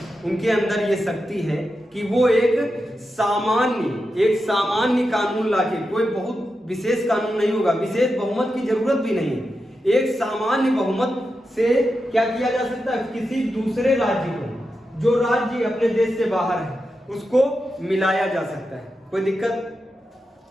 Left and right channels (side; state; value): both; normal; correlation 0.89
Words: उनके अंदर ये शक्ति है कि वो एक सामान्य कानून लाके, कोई बहुत विशेष कानून नहीं होगा, विशेष बहुमत की जरूरत भी नहीं है, एक सामान्य बहुमत से क्या किया जा सकता है, किसी दूसरे राज्य को, जो राज्य अपने देश से बाहर है, उसको मिलाया जा सकता है। कोई दिक्कत?